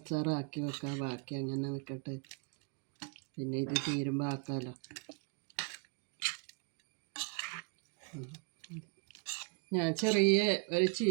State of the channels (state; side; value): quieter; left; 33.6 dB